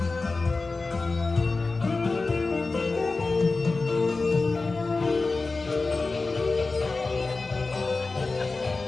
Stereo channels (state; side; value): quieter; right; 3.7 dB